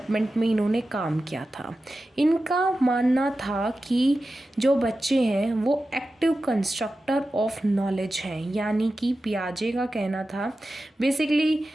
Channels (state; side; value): normal; both; correlation 0.93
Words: में इन्होंने काम किया था। इनका मानना था कि जो बच्चे हैं वो एक्टिव कंस्ट्रक्टर ऑफ नॉलेज हैं, यानी कि पियाजे का कहना था बेसिकली